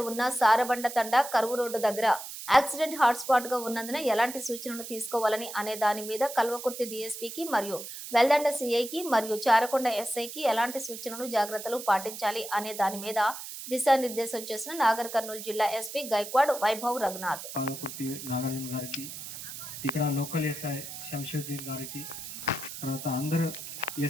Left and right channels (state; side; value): noise; right; hiss, 10 dB below the sound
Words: ఉన్న సారబండ తండ కరువు రోడ్డు దగ్గర యాక్సిడెంట్ హాట్ స్పాట్ గా ఉన్నందున ఎలాంటి సూచనలు తీసుకోవాలని అనే దాని మీద కల్వకుర్తి డీఎస్పీకి మరియు వెల్దండ సిఐకి మరియు చారకొండ ఎస్ఐకి ఎలాంటి సూచనలు జాగ్రత్తలు పాటించాలి అనే దాని మీద దిశానిర్దేశం చేసిన నాగర్ కర్నూలు జిల్లా ఎస్పీ గైక్వాడ్ వైభవ్ రఘునాథ్. ఇక్కడ లోకల్ ఎస్ఐ శంషుద్దీన్ గారికి, తర్వాత అందరు